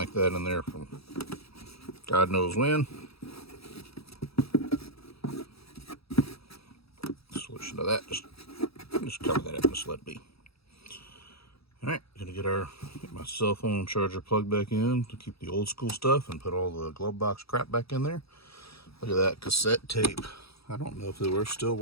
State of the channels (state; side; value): late; right; 0.77 ms